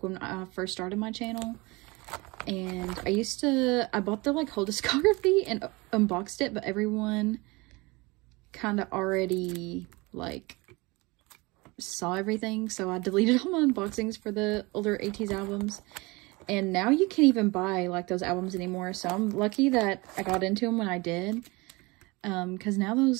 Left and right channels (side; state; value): left; quieter; 24.6 dB